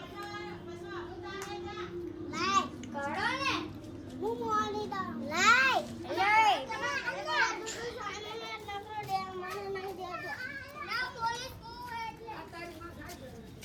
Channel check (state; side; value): identical; both; correlation 1.00